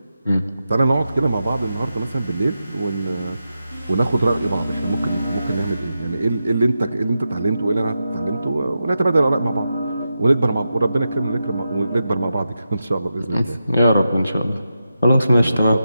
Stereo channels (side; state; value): both; inverted; correlation -0.89